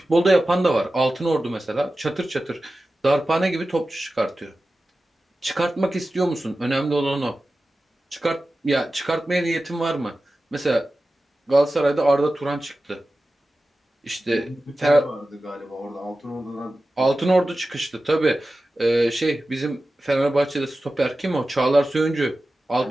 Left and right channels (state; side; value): normal; both; correlation 0.94